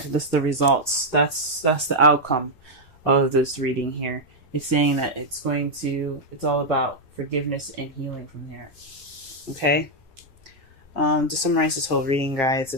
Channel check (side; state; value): both; normal; correlation -0.01